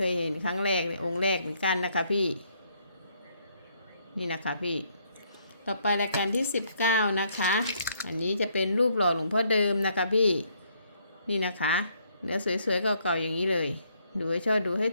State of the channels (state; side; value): inverted; both; correlation -0.70